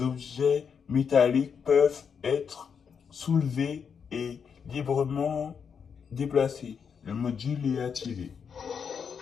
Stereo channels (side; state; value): right; quieter; 6.7 dB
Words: objets métalliques peuvent être soulevés et librement déplacés. Le module est activé.